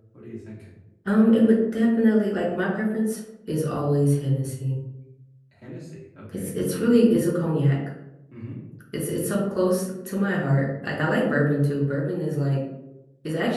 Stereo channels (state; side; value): identical; both; correlation 1.00